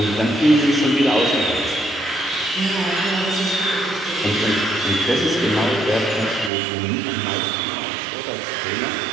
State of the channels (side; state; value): left; drops out; at 6.5 s